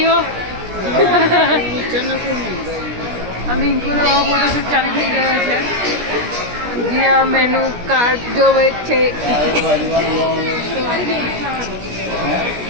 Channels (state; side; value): late; left; 17 ms